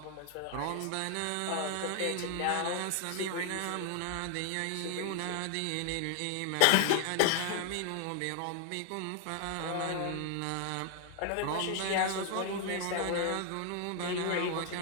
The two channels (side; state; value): both; different; correlation 0.00